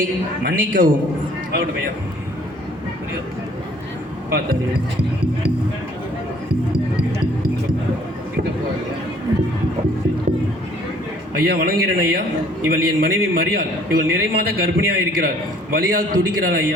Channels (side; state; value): both; normal; correlation 0.57